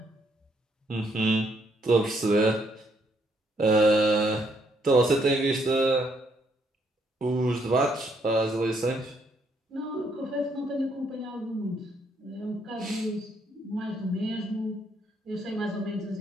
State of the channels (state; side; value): normal; both; correlation 0.72